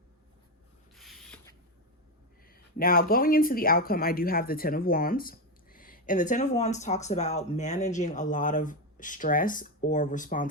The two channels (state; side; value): normal; both; correlation 0.10